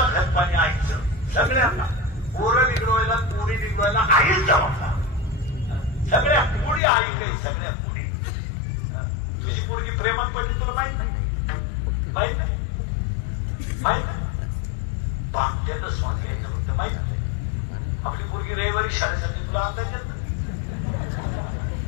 खतपाणी ऐकचं. सगळ्यांना पोरं बिघडवायला पोरी बिघडवायला आईच जबाबदार. सगळ्या पुढी आई काही सगळ्या पुढी. तुझी पोरगी प्रेमात पडली तुला माहित नाही. माहित नाही बांगल्याचं स्वान यायचं म्हणतं माहित नाही. आपली पोरगी रविवारी शाळेत जाते तुला अंदाज येत नाही.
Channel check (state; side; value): drops out; right; at 6.8 s